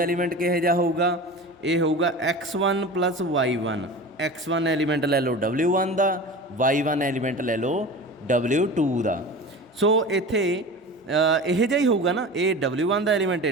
एलीमेंट किहो जिहा होऊगा, ये होऊगा X1 + Y1। X1 एलीमेंट ले लो W1 का, Y1 एलीमेंट ले लो W2 का। सो इत्थे यह जिहा ही होऊगा ना, ये W1 का एलीमेंट है,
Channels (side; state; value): both; normal; correlation 0.33